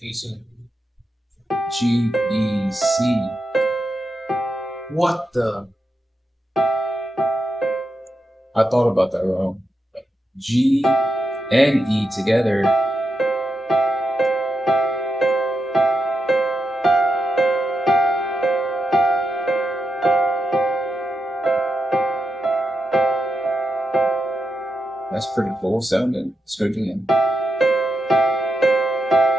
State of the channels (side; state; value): both; normal; correlation 0.87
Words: GEC. What the? I thought about that wrong. G and E together. That's pretty cool sounding. Let's go again.